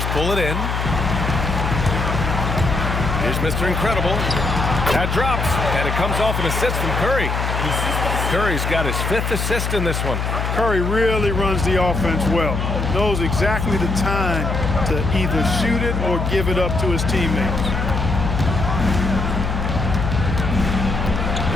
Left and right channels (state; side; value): noise; left; hum, 2 dB below the sound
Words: pull it in. Here's Mr. Incredible. That drops, and it comes off an assist from Curry. Curry's got his 5th assist in this one. Curry really runs the offense well. Knows exactly the time to either shoot it or give it up to his teammates.